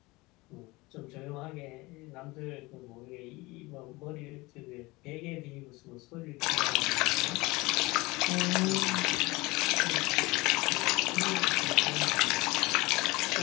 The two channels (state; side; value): quieter; right; 22.5 dB